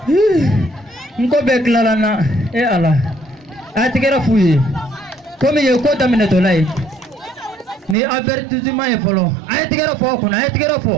Unko beklalana he ala. Atigera fuyi. Comme il y a quoi d'amener de l'aide, ni avertissement est follow. Aïe, tu gars fort, on a été gars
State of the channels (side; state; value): left; drops out; at 8.0 s